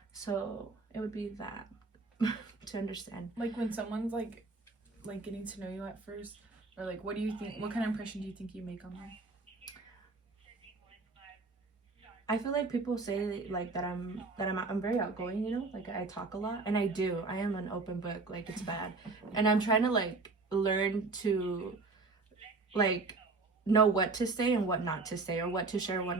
So it would be that to understand. Like when someone's like getting to know you at first, or like what do you think? What kind of impression do you think you make on them? I feel like people say like that I'm very outgoing, you know, like I talk a lot, and I do. I am an open book, like it's bad, and I'm trying to like learn to like know what to say and what not to say, or what to share, what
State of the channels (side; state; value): left; quieter; 3.8 dB